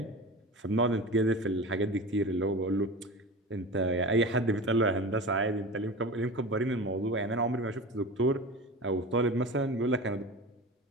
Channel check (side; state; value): both; normal; correlation 0.31